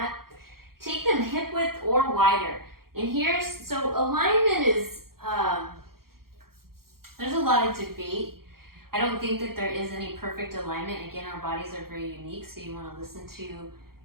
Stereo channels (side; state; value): left; late; 0.93 ms